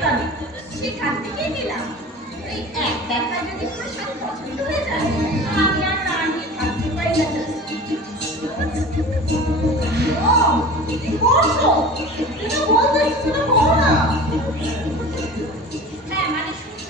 সেখান থেকে নিলাম। এই এক দেখা যদি কোনো শাড়ি পছন্দ হয়ে যায় আমি আর না নিয়ে থাকতে পারি না। ও কি করছো? তুমি বলতে শুনে করো না। হ্যাঁ মানে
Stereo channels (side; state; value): both; normal; correlation 0.38